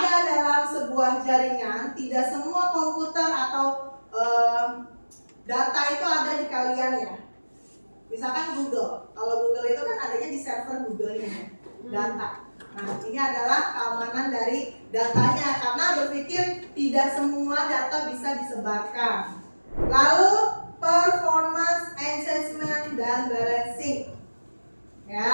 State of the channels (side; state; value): both; inverted; correlation -1.00